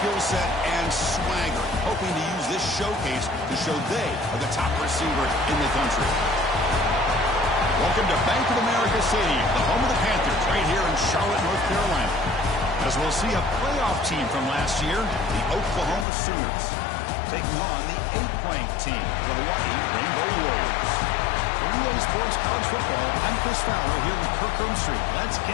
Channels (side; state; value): right; drops out; at 16.1 s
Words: set and swagger, hoping to use this showcase to show they are the top receiver in the country. Welcome to Bank of America Stadium, the home of the Panthers, right here in Charlotte, North Carolina. As we'll see a playoff team from last year, the Oklahoma Sooners, taking on the 8th-ranked team, the Hawaii Rainbow Warriors. For EA Sports College Football, I'm Chris Fowler here with Kirk Street. Let's